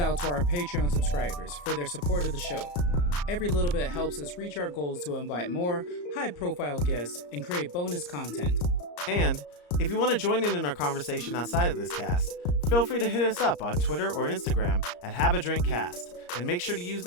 to our Patreon subscribers for their support of the show. Every little bit helps us reach our goals to invite more high-profile guests and create bonus content. And if you want to join in our conversation outside of this cast, feel free to hit us up on Twitter or Instagram at HaveADrinkCast, and make sure to use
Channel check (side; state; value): right; late; 34 ms